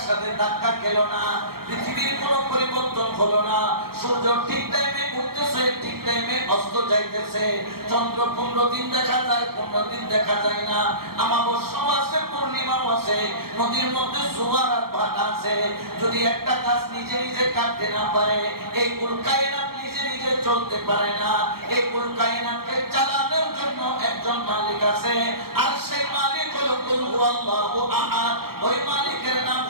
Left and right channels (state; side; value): late; left; 0.94 ms